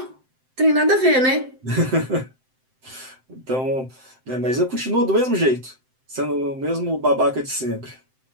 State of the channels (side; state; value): left; late; 7.7 ms